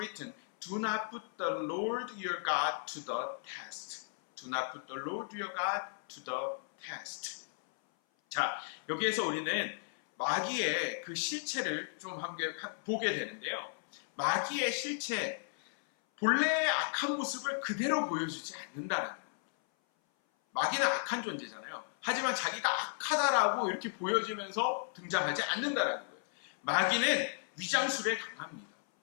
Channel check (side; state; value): right; silent; 54 dB below the other